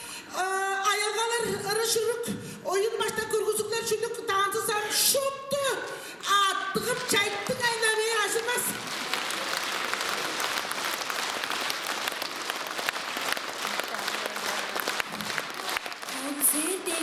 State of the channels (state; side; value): identical; both; correlation 1.00